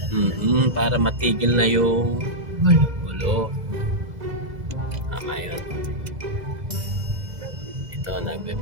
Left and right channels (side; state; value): left; late; 2.0 ms